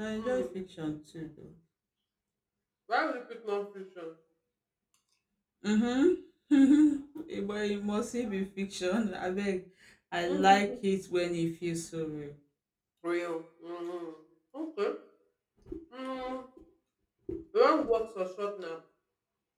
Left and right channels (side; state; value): both; identical; correlation 1.00